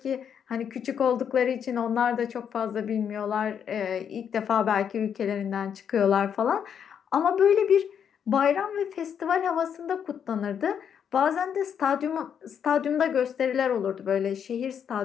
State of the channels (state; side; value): quieter; right; 8.0 dB